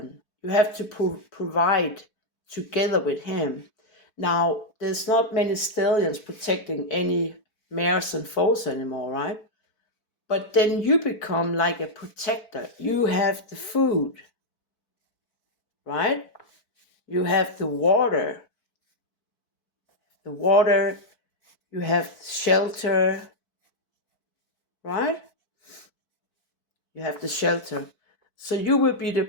You have to provide together with him. Now, there's not many stallions protecting any mares and foals anymore, right? But then you become like a protector. You have the food, right? You have the water. You have shelter, right? You have the shelter. So you will be the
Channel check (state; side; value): late; right; 4.6 ms